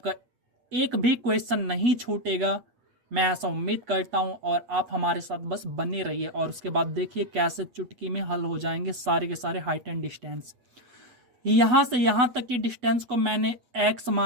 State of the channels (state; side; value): late; left; 8.2 ms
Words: एक भी क्वेश्चन नहीं छूटेगा, मैं ऐसा उम्मीद करता हूं। और आप हमारे साथ बस बने रहिए और उसके बाद देखिए कैसे चुटकी में हल हो जाएंगे सारे के सारे हाइट एंड डिस्टेंस। यहाँ से यहाँ तक की डिस्टेंस को मैंने x